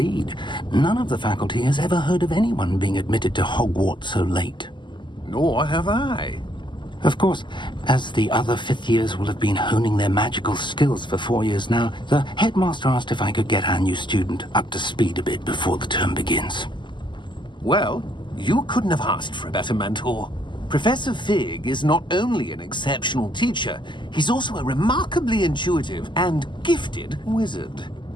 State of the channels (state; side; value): late; right; 0.22 ms